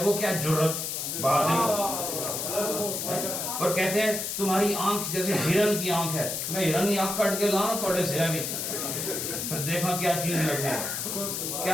وہ کیا؟ جرت، بہادری۔ اور کہتے ہیں تمہاری آنکھ جیسے ہرن کی آنکھ ہے، میں ہرن کی آنکھ کٹ کے لاؤں تھوڑے سے آگے، پھر دیکھا کیا چیز لگنے،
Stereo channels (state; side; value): noise; left; hiss, 3 dB below the sound